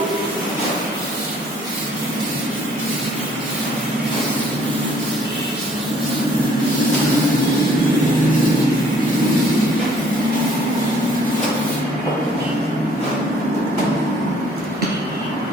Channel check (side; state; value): both; normal; correlation 0.60